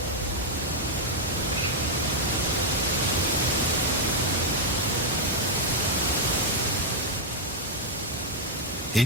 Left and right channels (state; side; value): normal; both; correlation -0.01